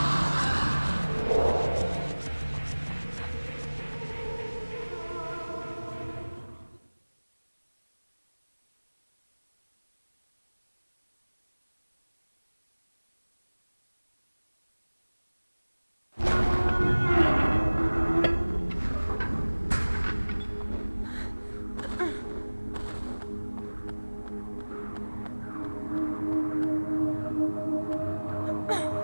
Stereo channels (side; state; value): both; inverted; correlation -1.00